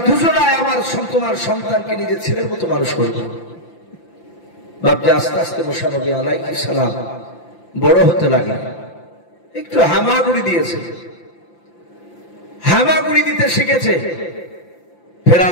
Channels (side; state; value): right; late; 5.8 ms